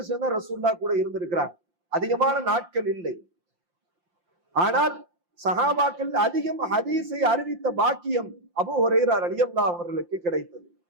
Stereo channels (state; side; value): late; left; 5.7 ms